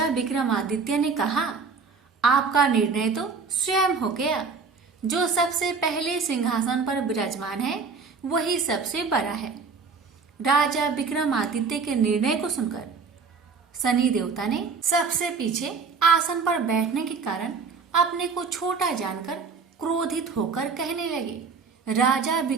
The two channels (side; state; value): left; quieter; 5.0 dB